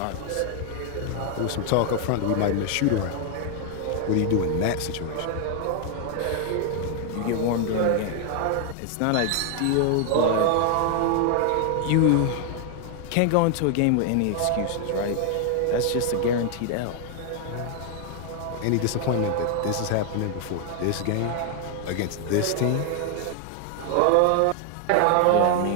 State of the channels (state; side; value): different; both; correlation 0.00